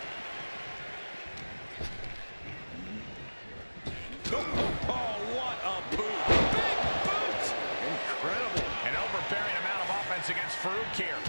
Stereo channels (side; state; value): both; inverted; correlation -1.00